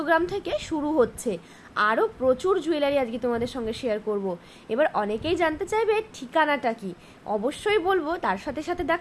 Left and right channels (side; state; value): both; identical; correlation 1.00